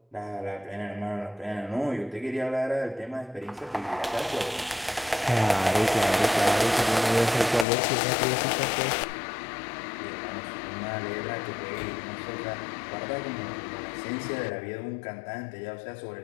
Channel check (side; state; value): right; drops out; at 7.7 s